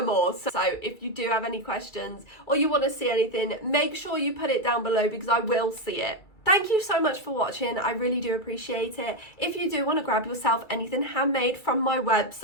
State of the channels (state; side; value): late; right; 2.3 ms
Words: all. So if you do have any questions or you want to see anything, make sure you put it down below because I will see it. Thank you so much for watching. I really do appreciate it. If you do want to grab yourself anything handmade from my